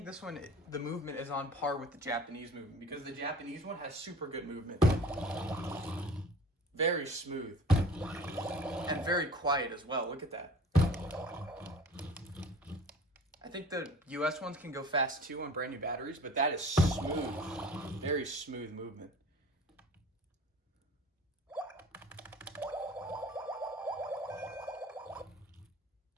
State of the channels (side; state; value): both; normal; correlation 0.43